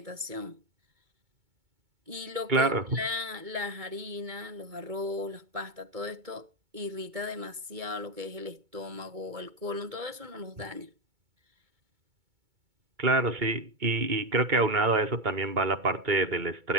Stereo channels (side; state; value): left; late; 2.2 ms